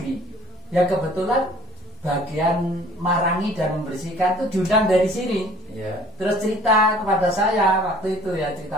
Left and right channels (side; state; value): both; normal; correlation 0.52